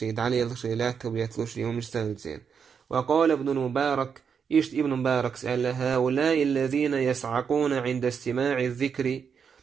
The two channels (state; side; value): quieter; left; 6.7 dB